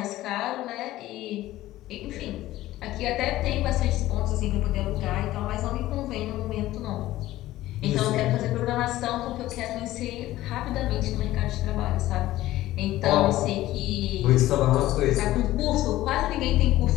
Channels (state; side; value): quieter; right; 15.6 dB